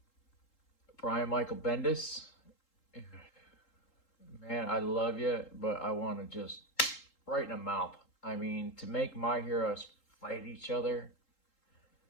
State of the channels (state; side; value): late; right; 3.8 ms